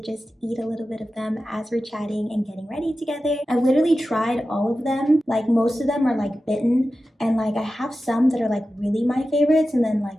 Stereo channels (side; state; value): both; normal; correlation 0.93